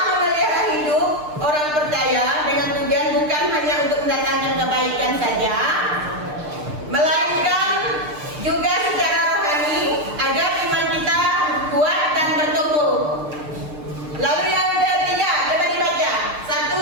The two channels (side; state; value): left; late; 6.6 ms